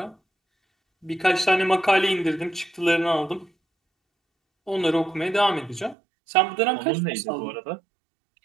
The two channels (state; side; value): drops out; left; at 6.0 s